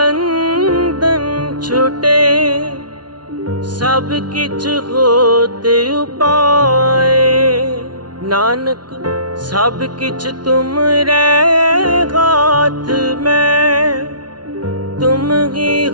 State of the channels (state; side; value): late; left; 0.70 ms